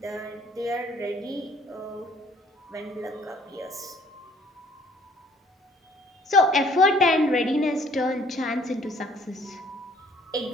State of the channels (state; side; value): normal; both; correlation 0.58